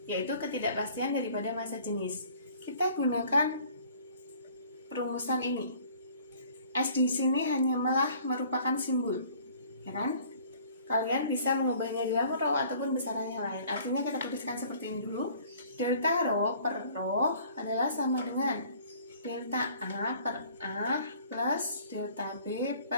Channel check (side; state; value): both; inverted; correlation -0.53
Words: yaitu ketidakpastian daripada massa jenis. Kita gunakan perumusan ini. S di sini hanya malah merupakan simbol, ya kan? Kalian bisa mengubahnya dalam rho ataupun besarannya lain. Artinya kita tuliskan seperti ini dulu. Delta rho per rho adalah sama dengan delta A per A plus delta B